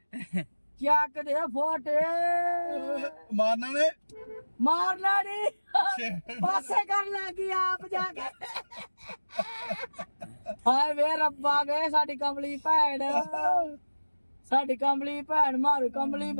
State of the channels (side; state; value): both; inverted; correlation -1.00